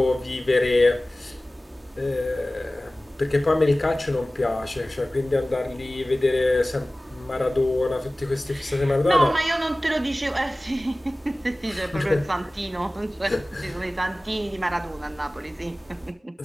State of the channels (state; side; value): normal; both; correlation 0.97